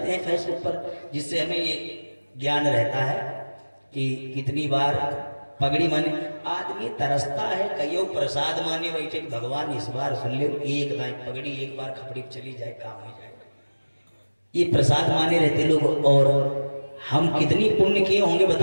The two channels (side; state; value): both; inverted; correlation -1.00